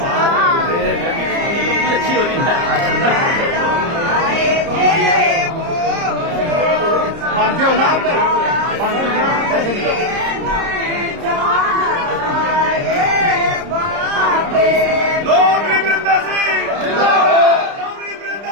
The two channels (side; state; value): left; late; 30 ms